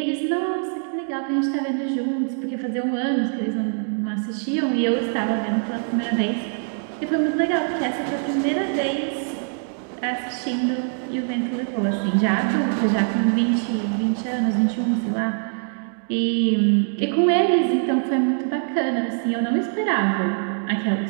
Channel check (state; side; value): silent; left; 62 dB below the other